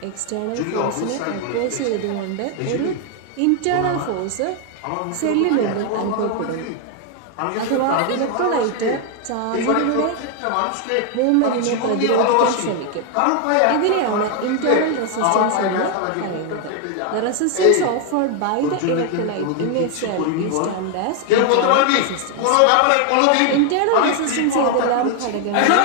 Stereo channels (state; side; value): different; both; correlation 0.01